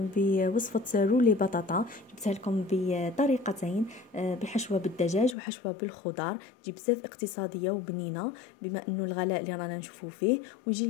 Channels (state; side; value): drops out; right; at 5.4 s